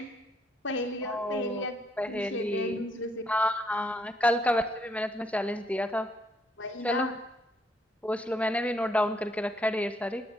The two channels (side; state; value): both; normal; correlation 0.71